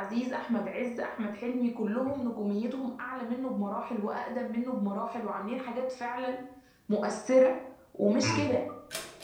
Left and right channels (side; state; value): both; identical; correlation 1.00